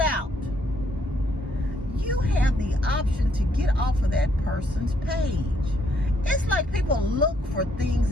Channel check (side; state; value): both; normal; correlation 0.71